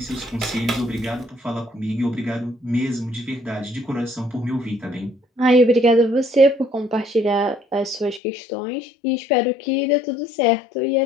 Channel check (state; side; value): drops out; right; at 8.2 s